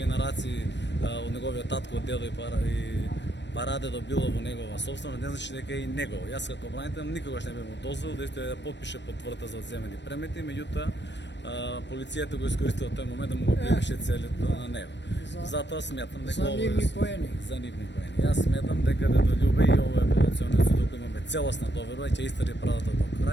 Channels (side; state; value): right; late; 0.51 ms